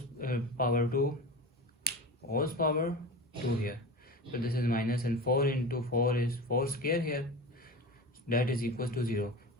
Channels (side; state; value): both; normal; correlation 0.30